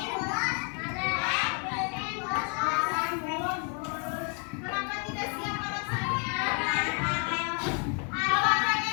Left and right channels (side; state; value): right; quieter; 37.6 dB